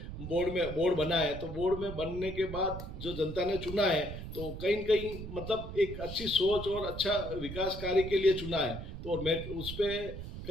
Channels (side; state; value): right; noise; rumble, 9 dB below the sound